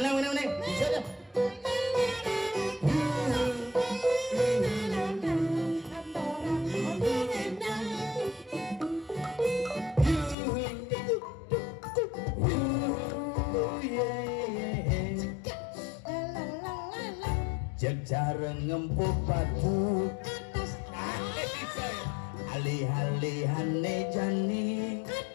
Neng. Bisa dah. Jarang ngempuk batu Atas alih-alihane jani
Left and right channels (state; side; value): drops out; right; at 10.4 s